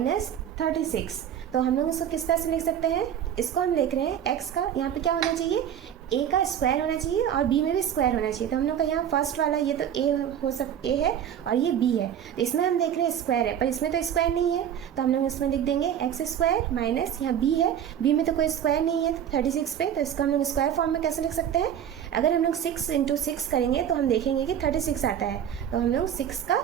36, तो हम लोग इसको किस तरह से लिख सकते हैं? इसको हम लिख रहे हैं एक्स का यहाँ पे क्या होना चाहिए? ए का स्क्वायर होना चाहिए और बी में भी स्क्वायर होना चाहिए। तो हम लोग का यहाँ फर्स्ट वाला ये तो ए है और ये बी है, तो इसमें हम देख रहे हैं स्क्वायर है, पर इसमें तो स्क्वायर नहीं है, तो हम लोग इसमें लिख देंगे एक्स स्क्वायर माइनस यहाँ बी है, बी में तो कोई स्क्वायर नहीं है 36 पे, तो इसको हम लोग स्क्वायर फॉर्म में कैसे लिख सकते हैं? अगर हम लोग 6 × 6 करेंगे तो हम देखेंगे कि 36 आता है, तो हम लोग 6 का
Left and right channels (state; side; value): quieter; left; 9.5 dB